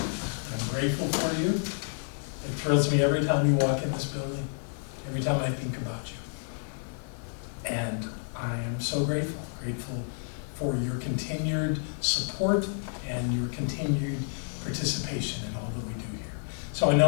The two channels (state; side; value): silent; right; 56 dB below the other